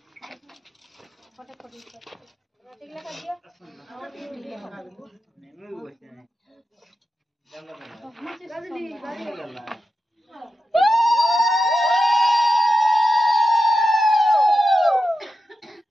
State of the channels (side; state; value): both; normal; correlation 0.90